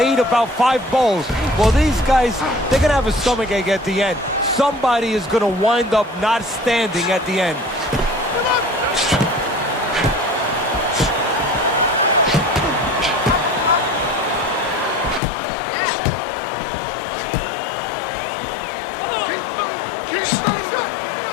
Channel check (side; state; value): right; drops out; at 15.2 s